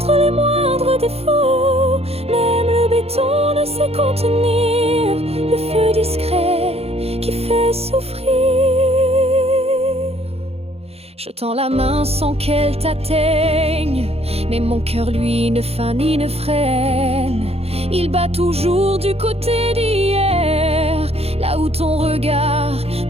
les moindres défauts. Même le béton ne sait contenir le feu discret qui fait souffrir. Je tends la main sans qu'elle t'atteigne, mais mon cœur lui ne feint ni ne freine. Il bat toujours du côté d'hier, là où ton regard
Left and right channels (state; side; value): late; left; 0.29 ms